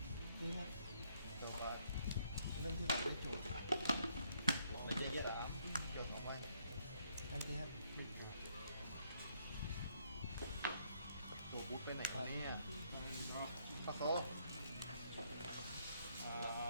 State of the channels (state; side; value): inverted; both; correlation -0.70